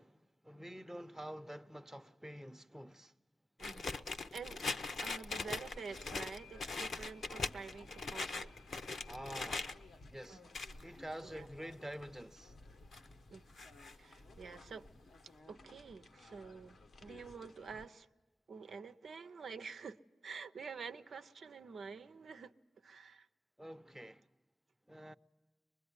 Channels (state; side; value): normal; both; correlation 0.82